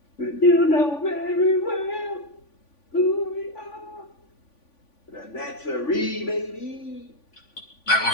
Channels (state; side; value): late; right; 3.5 ms